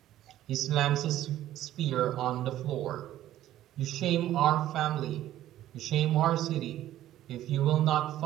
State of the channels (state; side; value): quieter; left; 13.3 dB